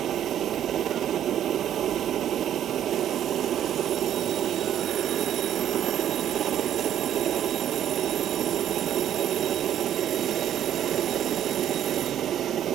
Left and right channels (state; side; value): quieter; left; 10.6 dB